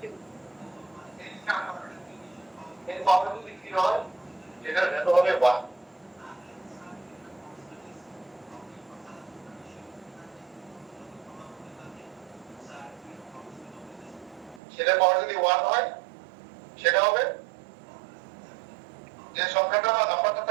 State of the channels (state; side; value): drops out; left; at 14.6 s